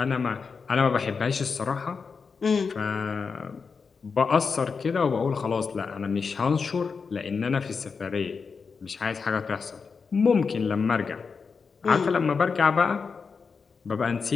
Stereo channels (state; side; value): quieter; right; 5.3 dB